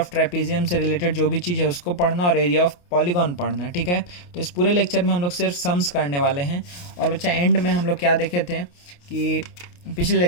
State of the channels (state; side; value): late; right; 28 ms